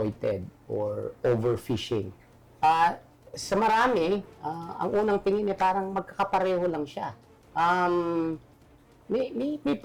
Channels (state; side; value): identical; both; correlation 1.00